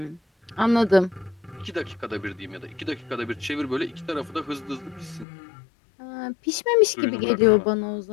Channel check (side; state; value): right; drops out; at 5.2 s